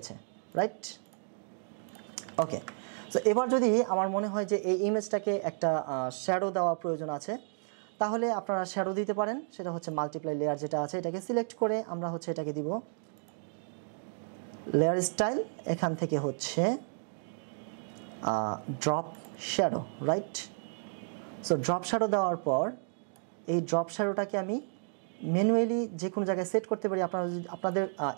রাইট? ওকে, সো এবার যদি আমার মনে হয় যে এই ইমেজটাকে একটা শ্যাডো দেওয়া প্রয়োজন আছে, তাহলে আপনারা শ্যাডো দিতে পারেন, সেটা হচ্ছে মাল্টিপ্লাই লেয়ার যেটা আছে এটাকে সিলেক্ট করে আমরা হচ্ছে এটাকে দিব লেয়ার স্টাইল, এখান থেকে হচ্ছে drop shadow, right? So drop shadow দেওয়ার পর এই ড্রপ শ্যাডোটাকে আমি ম্যানুয়ালি যে কোনো জায়গায় সেট করতে পারি। আপনাদের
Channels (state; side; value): silent; left; 56 dB below the other